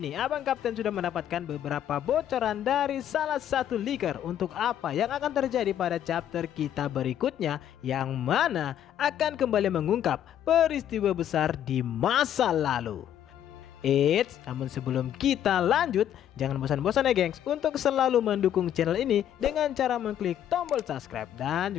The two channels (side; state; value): right; quieter; 10.5 dB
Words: Abang Kapten sudah mendapatkan beberapa bocoran dari salah satu leaker untuk apa yang akan terjadi pada chapter kita berikutnya, yang mana akan kembali mengungkap peristiwa besar di masa lalu. Namun sebelum kita lanjut, jangan bosan-bosan ya gengs untuk selalu mendukung channel ini dengan cara mengklik tombol subscribe dan